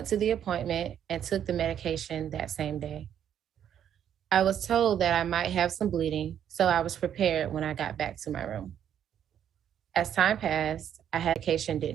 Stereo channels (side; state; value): left; quieter; 9.6 dB